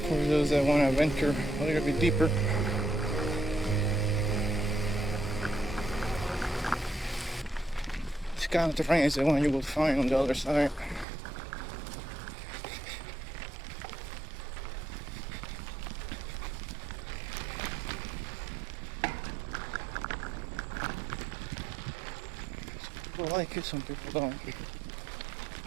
for those that want to venture a little bit deeper. This kind of terrain is the one you will find on the other side. Some people like it, some people don't.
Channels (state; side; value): drops out; left; at 11.1 s